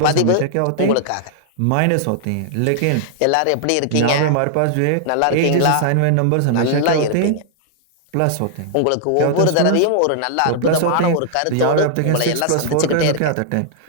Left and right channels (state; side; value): different; both; correlation -0.01